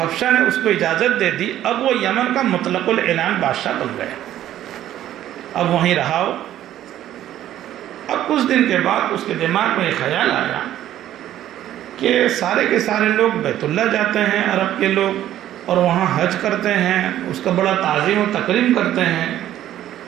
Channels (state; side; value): quieter; left; 12.4 dB